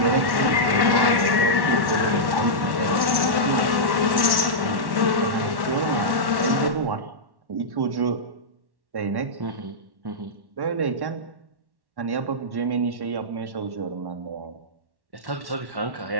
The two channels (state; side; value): late; left; 1.1 ms